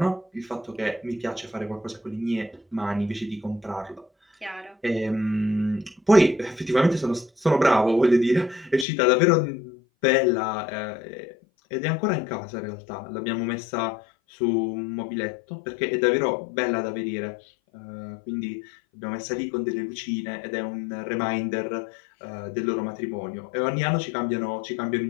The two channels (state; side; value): drops out; right; at 8.8 s